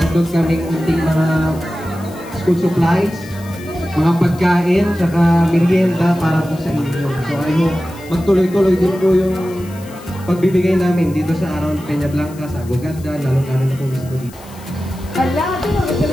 handog kaming unting mga school supplies, mga pagkain, tsaka merienda para po sa inyo. So I hope magtuloy-tuloy din po yung pagbibigay namin dito sa Around Peña Blanca, sa Aguganda, lalo-lalo na po mismo dito. Hala, ito,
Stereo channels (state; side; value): noise; left; hiss, 22 dB below the sound